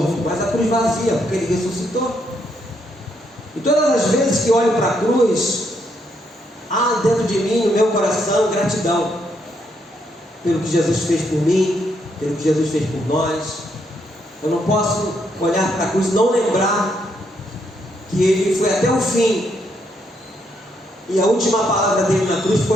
mas a cruz vazia, porque ele ressuscitou. E todas as vezes que olho para a cruz, há dentro de mim, no meu coração, gratidão pelo que Jesus fez por mim, pelo que Jesus fez por nós. Eu não posso olhar para a cruz e não lembrar que ele foi até o fim. E a última palavra dele na cruz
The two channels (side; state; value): both; normal; correlation 0.75